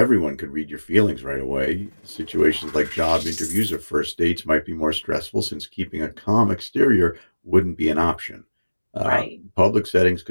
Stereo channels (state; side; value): inverted; both; correlation -1.00